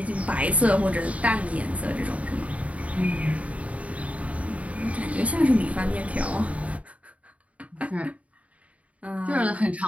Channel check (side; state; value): left; late; 0.067 ms